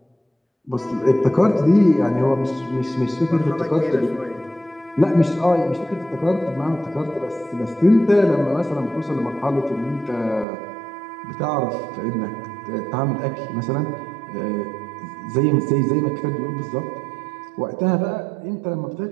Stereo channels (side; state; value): left; drops out; at 10.5 s